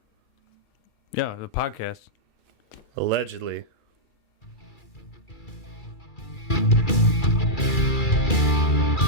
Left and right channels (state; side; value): late; right; 2.3 ms